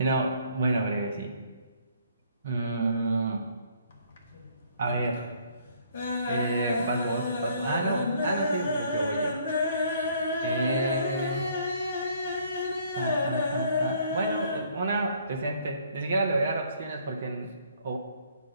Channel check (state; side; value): inverted; both; correlation -0.62